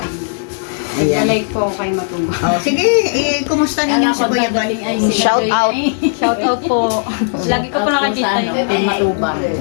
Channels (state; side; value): silent; right; digital silence